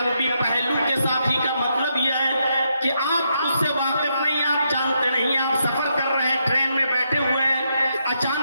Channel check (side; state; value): both; inverted; correlation -0.80